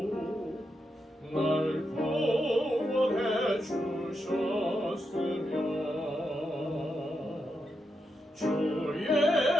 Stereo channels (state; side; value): normal; both; correlation 0.85